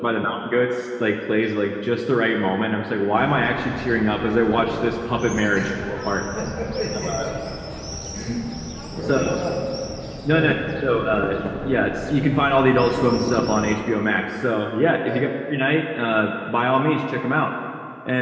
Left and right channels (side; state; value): both; identical; correlation 1.00